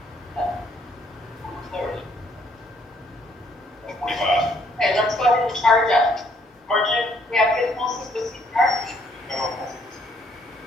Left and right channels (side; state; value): both; normal; correlation 0.67